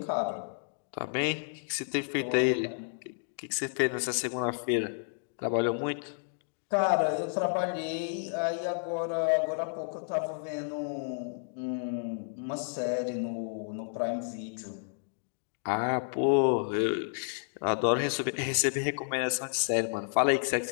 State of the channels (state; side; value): silent; right; digital silence